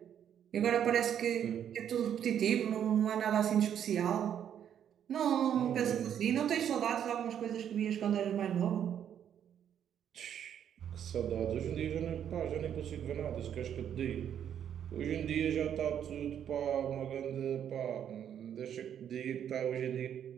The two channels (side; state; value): left; quieter; 9.3 dB